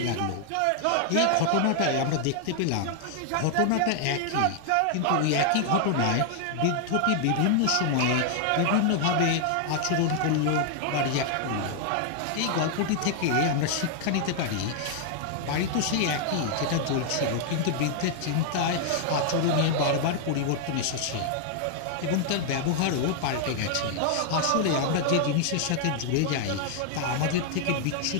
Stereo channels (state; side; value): different; both; correlation 0.00